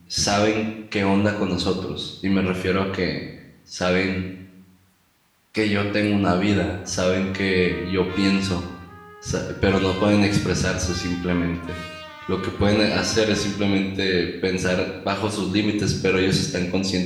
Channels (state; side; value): identical; both; correlation 1.00